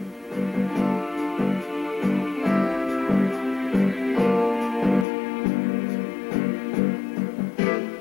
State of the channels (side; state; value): right; drops out; at 5.1 s